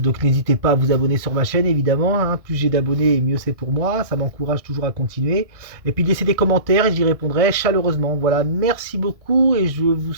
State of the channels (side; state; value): left; late; 1.6 ms